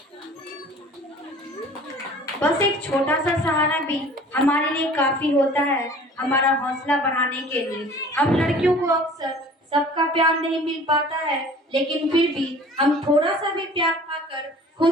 बस एक छोटा सा सहारा भी हमारे लिए काफी होता है, हमारा हौसला बढ़ाने के लिए। हम लड़कियों को अक्सर सबका प्यार नहीं मिल पाता है, लेकिन फिर भी हम थोड़ा सा भी प्यार पाकर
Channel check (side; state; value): both; normal; correlation 0.47